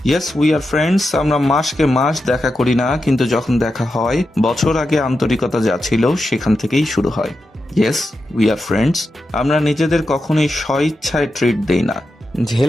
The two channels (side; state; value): both; normal; correlation 0.89